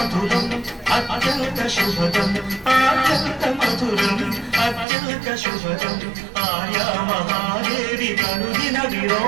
అత్యంత శుభదం అత్యంత మధురం అత్యంత శుభదం ఆర్యా మహాదేవి కనుదిన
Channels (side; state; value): left; drops out; at 4.9 s